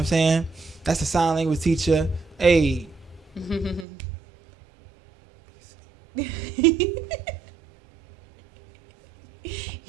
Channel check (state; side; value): drops out; left; at 3.9 s